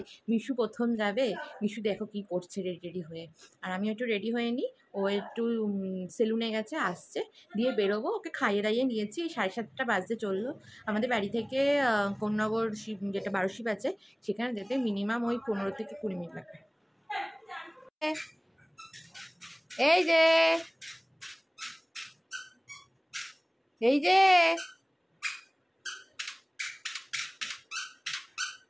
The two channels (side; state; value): both; identical; correlation 1.00